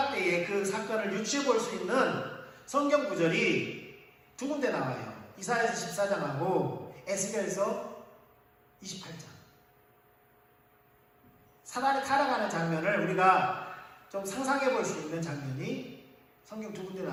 때에 그 사건을 유추해 볼 수 있는 성경 구절이 두 군데 나와요. 이사야서 14장하고 에스겔서 28장. 사단이 타락하는 장면을 우리가 좀 상상해 볼 수 있는 장면이 성경 두 군데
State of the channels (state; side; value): identical; both; correlation 1.00